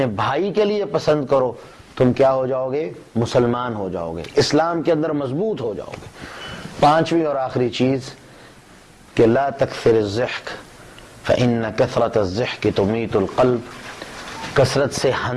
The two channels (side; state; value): both; identical; correlation 1.00